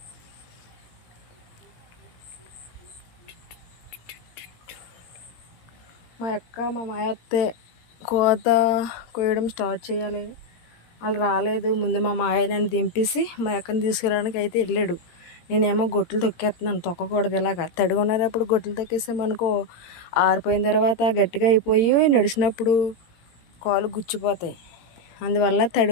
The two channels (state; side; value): late; right; 17 ms